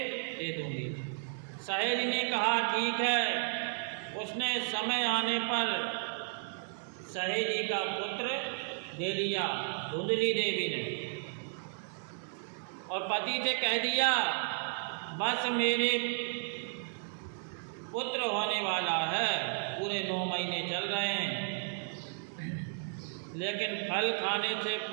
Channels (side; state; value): left; silent; 55 dB below the other